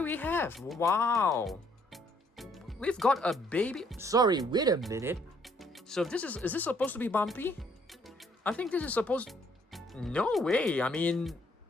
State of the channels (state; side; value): normal; both; correlation 0.66